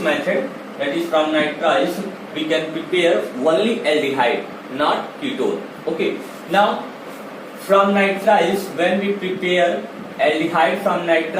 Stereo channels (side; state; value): both; identical; correlation 1.00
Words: that is from nitriles, we can prepare only aldehyde, not ketone. Okay, now from nitriles, when we prepare aldehyde from